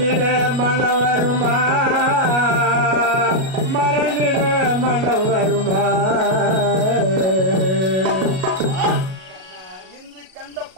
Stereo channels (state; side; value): late; left; 37 ms